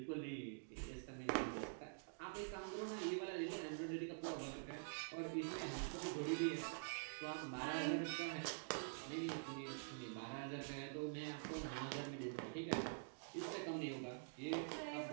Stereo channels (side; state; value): left; silent; digital silence